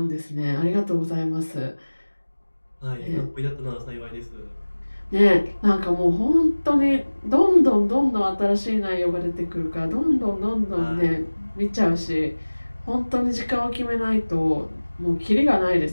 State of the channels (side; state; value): both; inverted; correlation -1.00